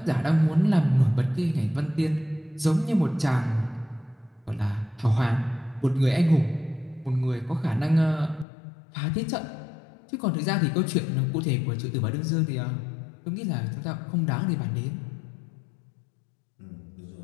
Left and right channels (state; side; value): drops out; right; at 8.5 s